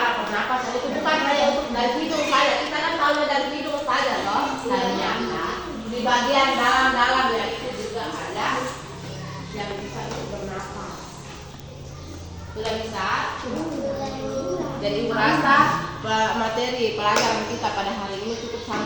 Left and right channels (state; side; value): identical; both; correlation 1.00